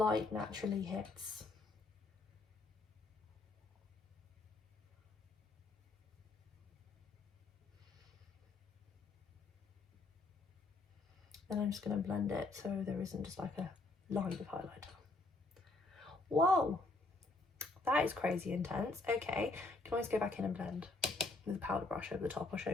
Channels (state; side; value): quieter; right; 3.3 dB